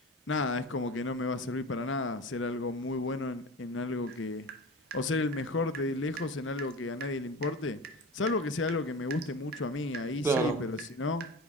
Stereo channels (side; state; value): both; normal; correlation 0.32